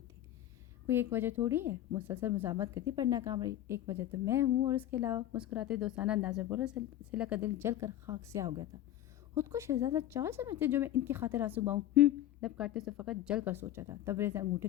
تھی. کوئی ایک وجہ تھوڑی ہے، مسلسل مزاحمت کرتی پر ناکام رہی. ایک وجہ تو میں ہوں اور اس کے علاوہ مسکراتے دوستانہ انداز میں بولا. سلا کا دل جل کر خاک سیاہ ہو گیا تھا. خود کو شہزادہ چال سمجھتے جو میں ان کی خاطر آنسو باؤں. لب کاٹتے سے فقط جل کر سوچا تھا. تبریز نے انگوٹھے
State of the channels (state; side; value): quieter; right; 12.8 dB